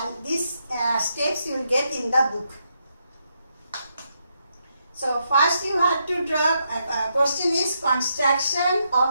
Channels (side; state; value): both; inverted; correlation -0.80